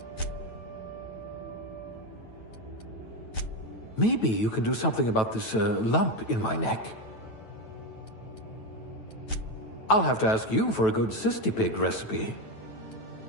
Maybe you can do something about this lump in my neck. I'll have to ask you for a good cystipig recipe.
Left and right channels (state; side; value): late; right; 9.1 ms